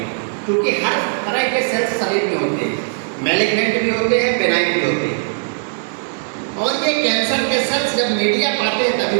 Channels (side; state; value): left; silent; digital silence